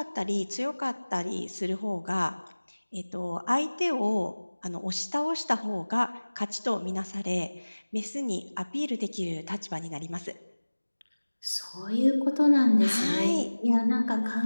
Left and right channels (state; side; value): inverted; both; correlation -1.00